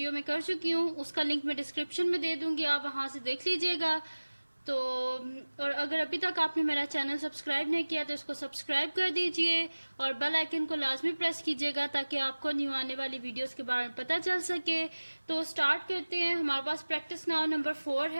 में कर चुकी हूँ, उसका लिंक मैं डिस्क्रिप्शन में दे दूंगी, आप वहाँ से देख लीजिएगा। तो और अगर अभी तक आपने मेरा चैनल सब्सक्राइब नहीं किया तो इसको सब्सक्राइब कर दीजिए और बेल आइकन को लाजमी प्रेस कीजिएगा ताकि आपको न्यू आने वाली वीडियोस के बारे में पता चल सके। तो स्टार्ट करते हैं। हमारे पास प्रैक्टिस नाउ नंबर 4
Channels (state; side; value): inverted; both; correlation -1.00